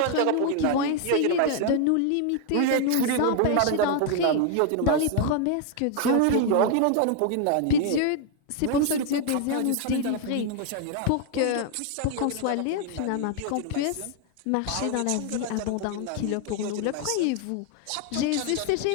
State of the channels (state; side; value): different; both; correlation 0.00